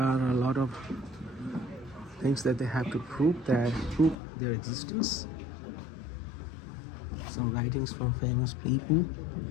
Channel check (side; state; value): right; drops out; at 4.2 s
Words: a lot of things that they have to prove their existence. Some writings from famous people.